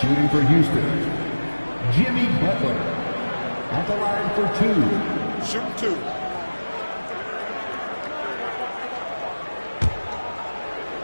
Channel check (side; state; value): both; inverted; correlation -1.00